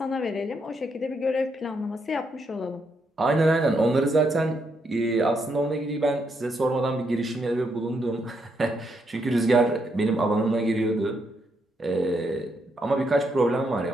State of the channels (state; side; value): normal; both; correlation 0.77